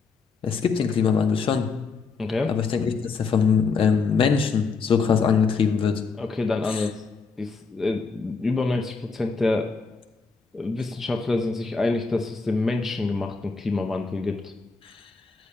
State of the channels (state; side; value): quieter; right; 4.8 dB